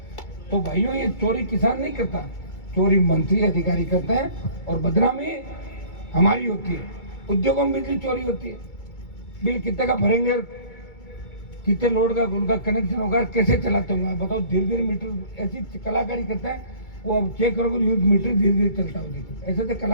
तो भाइयों ये चोरी किसान नहीं करता, चोरी मंत्री अधिकारी करते हैं और बदनामी हमारी होती है। उद्योगों में बिजली चोरी होती है। बिल कितने का भरेंगे, कितने लोड का उनका कनेक्शन होगा, कैसे चलाते होंगे बताओ? धीरे धीरे मीटर, ऐसी कलाकारी करते हैं वो। अब चेक करोगे न्यूज मीटर धीरे धीरे चलता हो, देखो ऐसे तो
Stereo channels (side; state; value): right; late; 2.3 ms